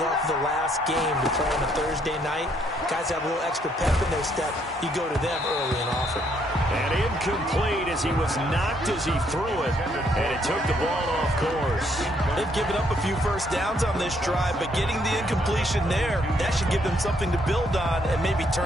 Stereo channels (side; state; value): both; normal; correlation 0.70